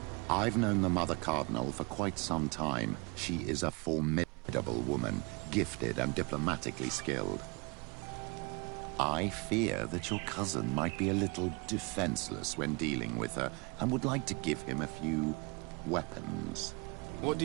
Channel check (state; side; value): quieter; left; 29.5 dB